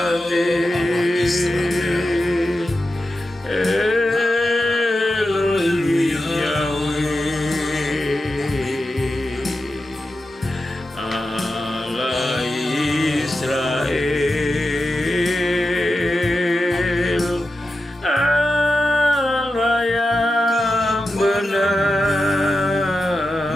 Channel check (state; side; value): normal; both; correlation 0.91